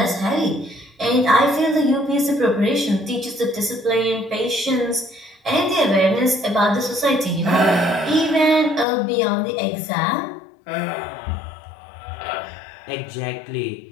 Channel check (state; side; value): drops out; right; at 8.8 s